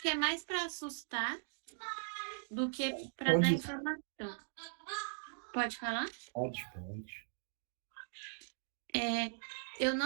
que é mais para assustar do que para dar informação. Pode falar? Pode. Eu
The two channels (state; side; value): silent; left; digital silence